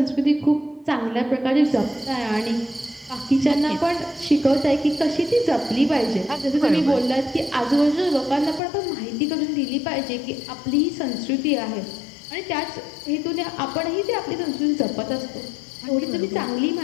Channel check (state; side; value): drops out; right; at 8.6 s